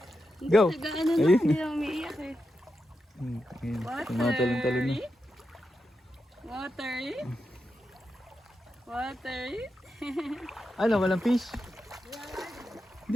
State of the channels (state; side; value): normal; both; correlation 0.88